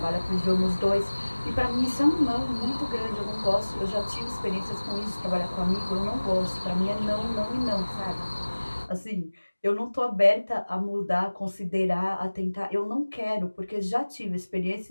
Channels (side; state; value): both; inverted; correlation -1.00